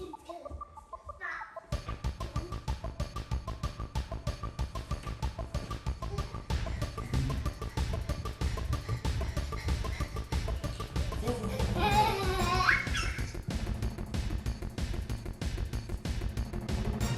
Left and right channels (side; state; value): both; identical; correlation 1.00